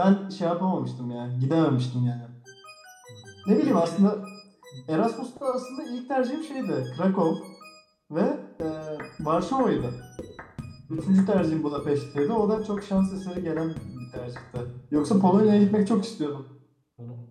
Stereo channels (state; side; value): identical; both; correlation 1.00